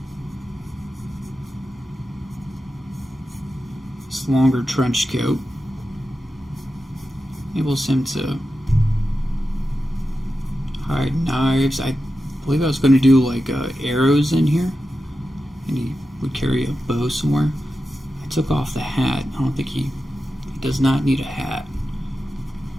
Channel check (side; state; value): both; normal; correlation 0.91